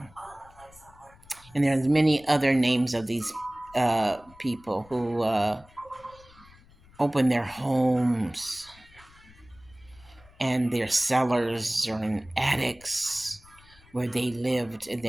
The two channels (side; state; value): left; noise; rumble, 25 dB below the sound